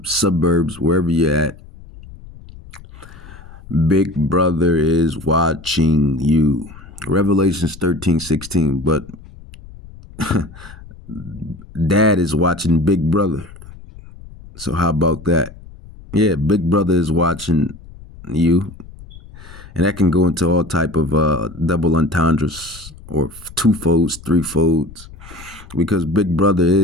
suburbs, wherever you're at, Big Brother is watching you. Revelations 13, 16, but Dad is watching Big Brother. So how about that? Yeah, Big Brother is watching you. And that can go into all type of double entendres or two-folds, three-folds, because Big Brother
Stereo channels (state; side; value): noise; left; rumble, 18 dB below the sound